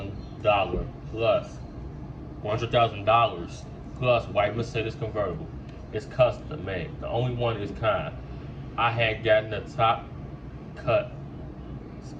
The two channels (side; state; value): both; identical; correlation 1.00